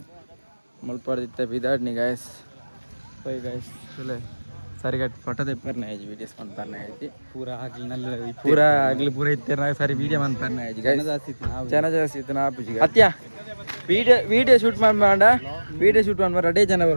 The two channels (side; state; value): both; inverted; correlation -1.00